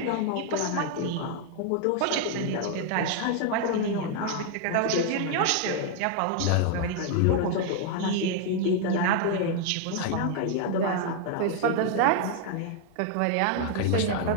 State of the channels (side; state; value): both; different; correlation 0.00